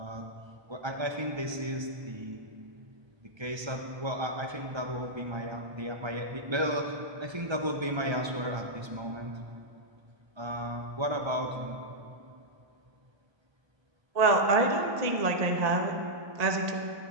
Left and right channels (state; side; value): late; left; 1.3 ms